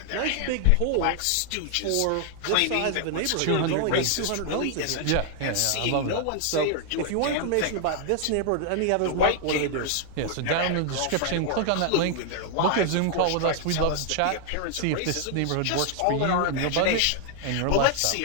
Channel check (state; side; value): different; both; correlation 0.00